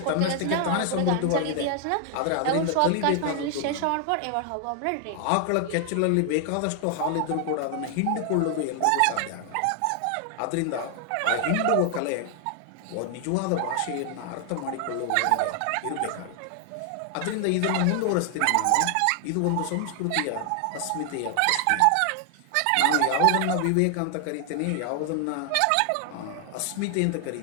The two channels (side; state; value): both; different; correlation 0.00